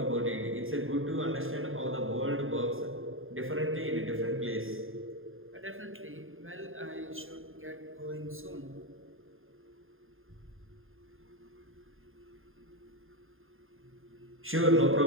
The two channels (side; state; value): left; late; 0.59 ms